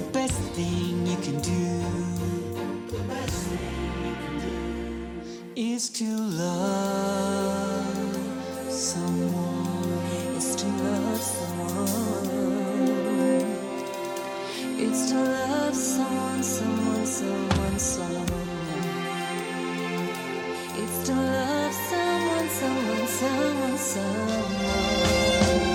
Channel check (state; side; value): identical; both; correlation 1.00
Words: best thing you can do, the best thing you can do is to love someone. It's to love someone. It's to love someone, someone, someone, someone. It's to love someone, someone, someone, someone.